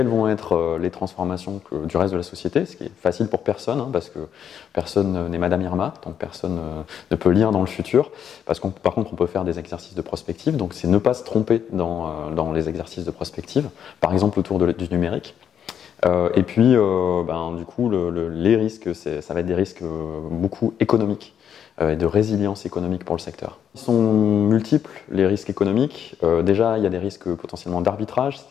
vont être les transformations du reste de la société, ce qui est facile pour personne, hein, parce que personne n'est Madame Irma, donc personne ne peut lire dans le futur. Par contre, on peut faire des exercices de prospective, donc c'est ne pas se tromper dans les exercices de prospective, par exemple autour du numérique. Et puis, du coup, les risques, ça va être des risques beaucoup économiques et de résilience économique pour le secteur. Ils sont multiples, les risques économiques. Déjà, il y a des risques potentiellement d'arbitrage,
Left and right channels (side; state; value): right; quieter; 8.7 dB